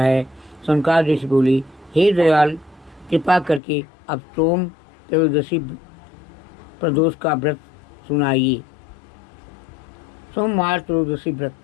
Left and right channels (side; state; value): right; drops out; at 3.6 s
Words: शंकर ऋषि बोले, हे दयाल, कृपा करके अब सोम त्रयोदशी प्रदोष का व्रत सुनाइए। सोमवार त्रयोदशी व्रत,